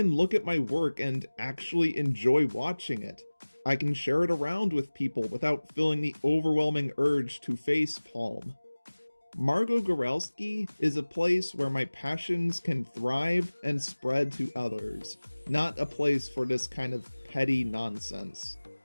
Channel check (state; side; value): inverted; both; correlation -1.00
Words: look at my work and actually enjoy watching it. I can share it around with people without feeling the overwhelming urge to facepalm. Margo Goralski is a place where my passions can thrive and spread to others, not a place for this kind of petty nonsense.